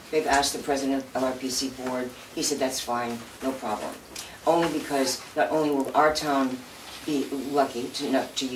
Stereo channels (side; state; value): both; identical; correlation 1.00